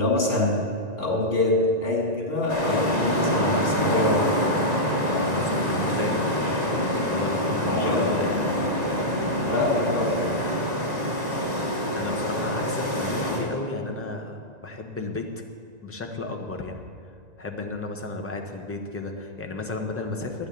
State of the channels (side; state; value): left; late; 1.9 ms